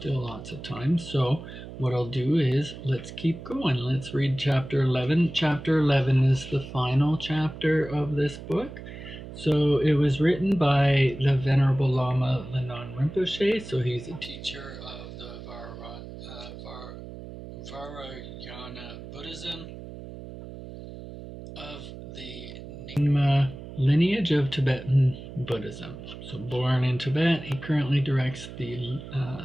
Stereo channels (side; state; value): right; noise; hum, 12 dB below the sound